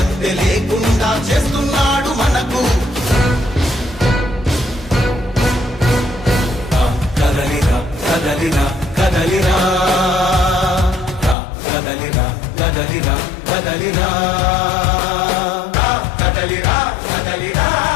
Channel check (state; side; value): drops out; right; at 11.4 s